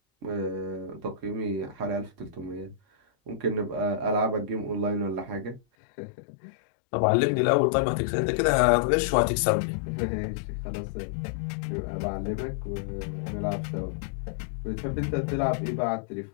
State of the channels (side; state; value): right; drops out; at 5.6 s